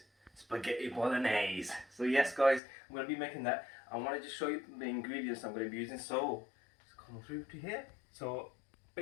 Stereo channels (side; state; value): right; drops out; at 2.6 s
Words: Spaghetti Bolognese. So yes guys, I'm going to be making that. I want to just show you the ingredients I'm going to be using. So just come through to here. So